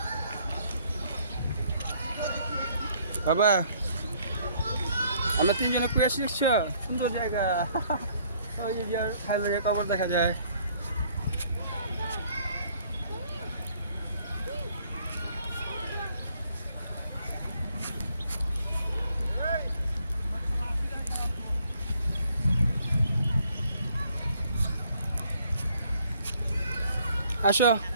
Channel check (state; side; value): inverted; both; correlation -0.64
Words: বাবা আমরা তিনজনে কুয়ে আসছি দেখছো সুন্দর জায়গা ওই যে হাইলারিয়া কবর দেখা যায় আসো